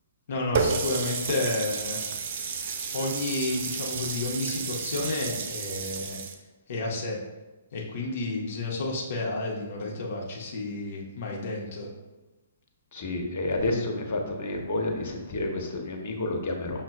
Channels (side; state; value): both; inverted; correlation -0.54